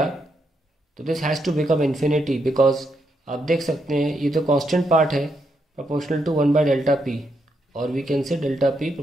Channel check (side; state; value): both; normal; correlation 0.79